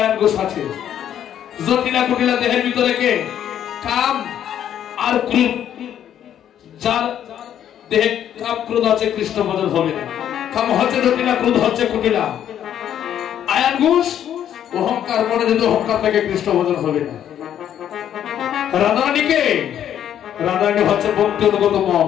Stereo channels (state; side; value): quieter; right; 10.2 dB